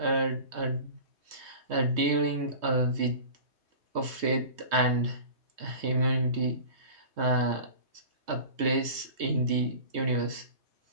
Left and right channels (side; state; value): left; late; 3.2 ms